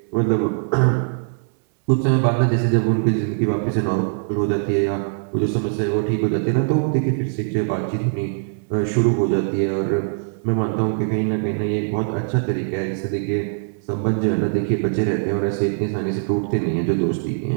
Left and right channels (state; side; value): silent; left; digital silence